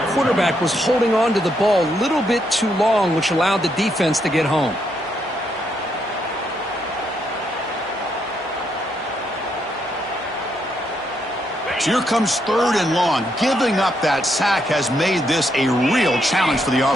was holding on to the ball a little bit too long, which allowed the defense to get home. So here comes 3rd and long. Giving up that sack has made this a real challenge for the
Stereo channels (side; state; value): both; normal; correlation 0.77